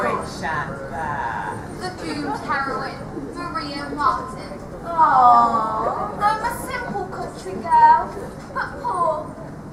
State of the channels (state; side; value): identical; both; correlation 1.00